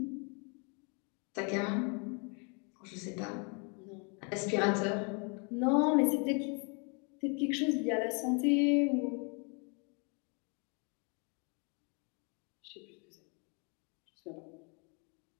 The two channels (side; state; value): right; quieter; 35.3 dB